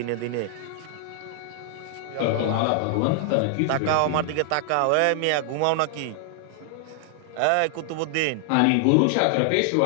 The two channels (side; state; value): both; different; correlation 0.00